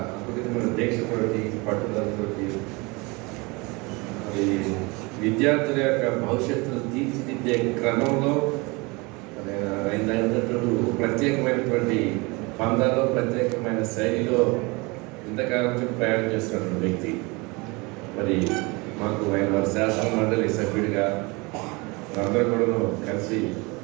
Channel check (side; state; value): left; quieter; 26.3 dB